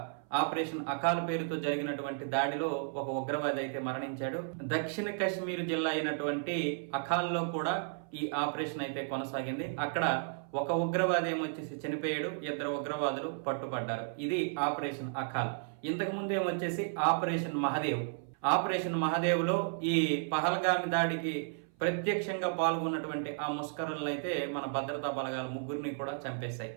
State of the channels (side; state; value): left; silent; 55 dB below the other